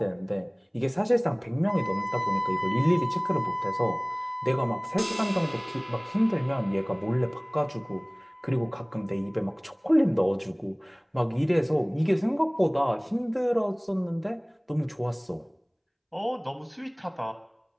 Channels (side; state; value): both; identical; correlation 1.00